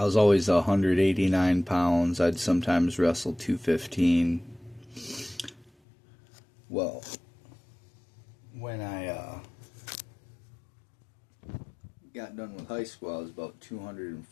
was always 189 pounds. I'd sometimes wrestle 215. Well, when I got done with high school, I was about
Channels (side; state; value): right; drops out; at 5.7 s